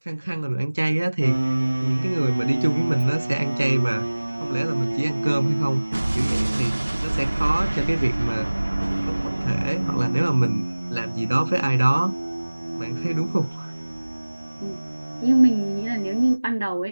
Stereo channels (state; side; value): inverted; both; correlation -1.00